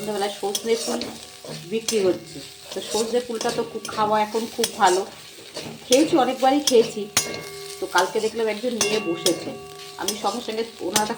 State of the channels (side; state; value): both; identical; correlation 1.00